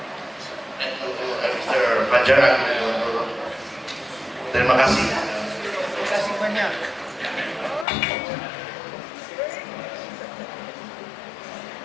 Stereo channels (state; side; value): drops out; right; at 7.9 s